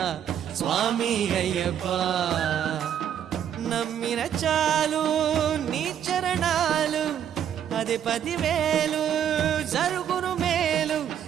స్వామి అయ్యప్ప. నమ్మిన చాలు నీ చరణాలు అది 10,000 జరుగును మేలు.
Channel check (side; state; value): left; quieter; 9.5 dB